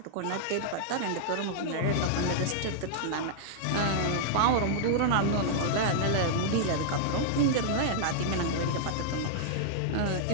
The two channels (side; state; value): both; different; correlation -0.01